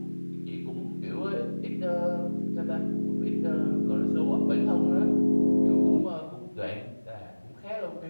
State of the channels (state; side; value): inverted; both; correlation -1.00